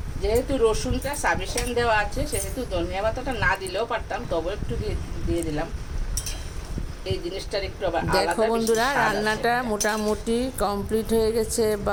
যেহেতু রসুনটা সাফিসিয়েন্ট দেওয়া আছে, সেহেতু ধনিয়া পাতাটা না দিলেও পারতাম, তবে একটু দিয়ে দিলাম। এই জিনিসটার একটু আবার দেখো বন্ধুরা, রান্নাটা মোটামুটি কমপ্লিট হয়ে গেছে।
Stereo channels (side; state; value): both; identical; correlation 1.00